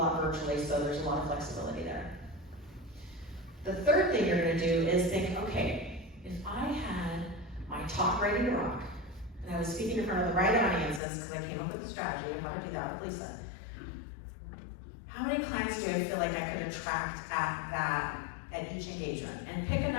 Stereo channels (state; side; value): drops out; right; at 11.0 s